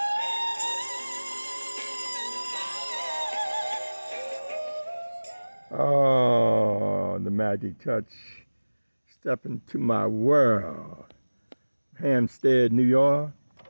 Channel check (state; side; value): inverted; both; correlation -1.00